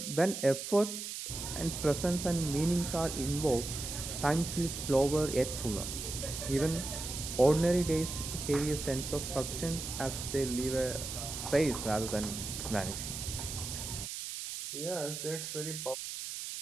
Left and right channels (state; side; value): noise; right; hiss, 6 dB below the sound